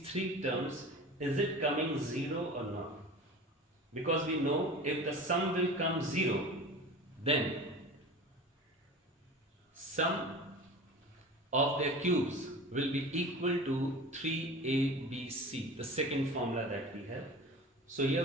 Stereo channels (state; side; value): normal; both; correlation 0.36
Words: 3 terms, is it coming 0 or not. Because we know if the sum will come 0, then sum of their cubes will be equal to 3ABC, the second formula that we have. So